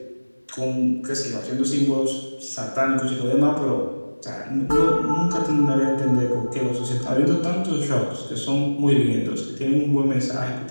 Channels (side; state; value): both; inverted; correlation -1.00